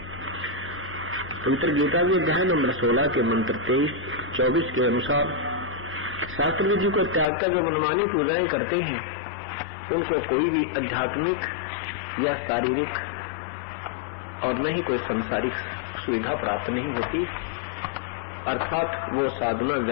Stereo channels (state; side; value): drops out; right; at 7.2 s